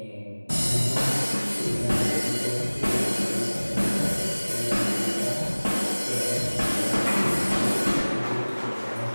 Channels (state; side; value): inverted; both; correlation -1.00